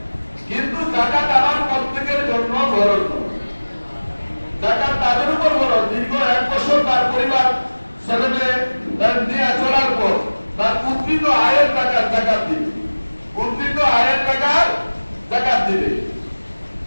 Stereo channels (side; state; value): both; inverted; correlation -1.00